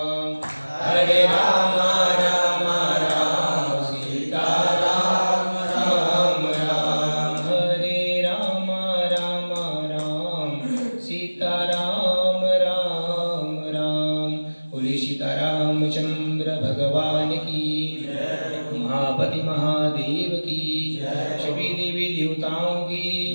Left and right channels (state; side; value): inverted; both; correlation -1.00